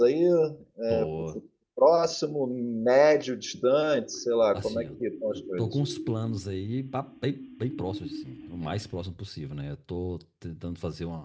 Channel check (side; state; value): both; identical; correlation 1.00